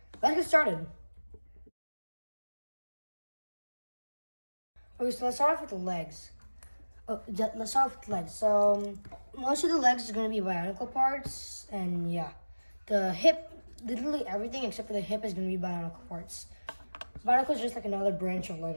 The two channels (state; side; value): inverted; both; correlation -1.00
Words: Let's get started. Okay, so let's start off with the legs. Let's start off with the legs. So most of the legs is going to be bionicle parts, and yeah, the hip, literally everything except for the hip is going to be bionicle parts. Bionicle is just like another branch of